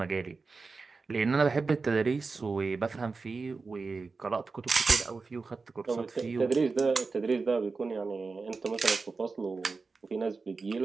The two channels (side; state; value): left; quieter; 4.3 dB